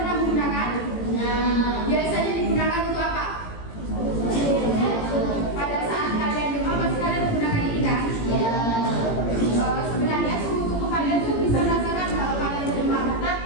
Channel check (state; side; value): late; right; 18 ms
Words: pernah menggunakan? Nah, biasanya digunakan untuk apa? Pada saat kalian demam, pasti kalian menggunakan ini kan? Ya. Sebenarnya suhu tubuh kalian tuh bisa merasakan kalau kalian demam,